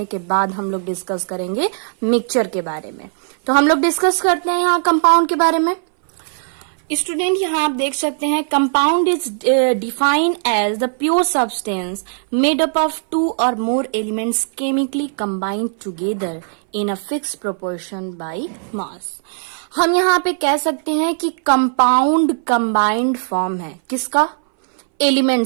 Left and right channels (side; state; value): left; silent; 62 dB below the other